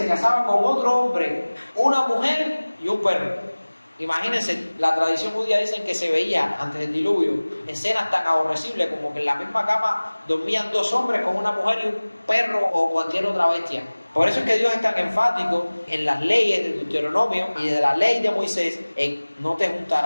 casaba con otro hombre, una mujer y un perro. Imagínense, la tradición judía dicen que se veía antes del diluvio escenas tan aborrecibles como que en la misma cama dormían dos hombres con una mujer y un perro o cualquier otra bestia. Por eso es que Dios es tan enfático en las leyes de Deuteronomio y de la ley de Moisés en no te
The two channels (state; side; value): inverted; both; correlation -1.00